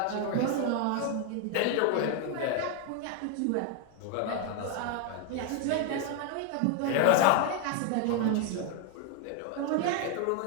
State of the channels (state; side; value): different; both; correlation 0.01